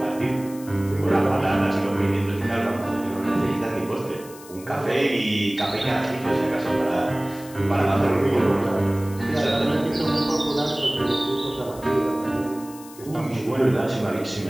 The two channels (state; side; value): noise; left; hiss, 19 dB below the sound